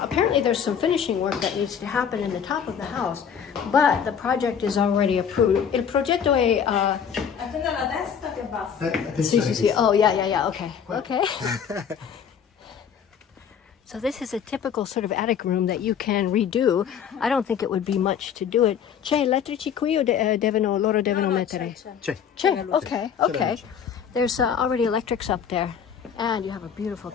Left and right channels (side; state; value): right; quieter; 7.7 dB